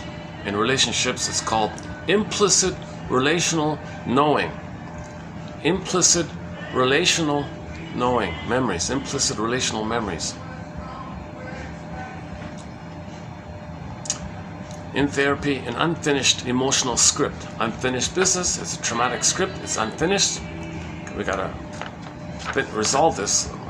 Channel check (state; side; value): identical; both; correlation 1.00